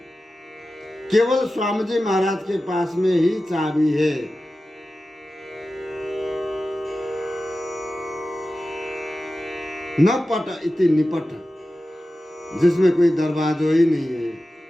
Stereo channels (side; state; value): both; normal; correlation 0.94